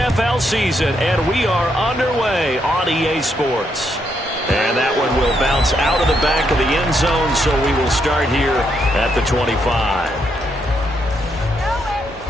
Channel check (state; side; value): normal; both; correlation 0.77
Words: season, and we are underway on EA Sports. And that one will bounce out of the back of the end zone, so we will start here at the 25.